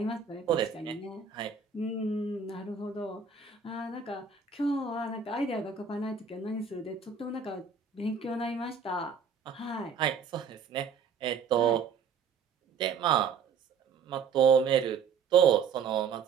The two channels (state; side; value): quieter; left; 6.1 dB